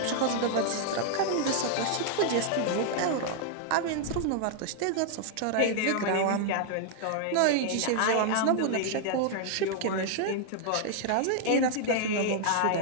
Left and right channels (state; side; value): different; both; correlation -0.01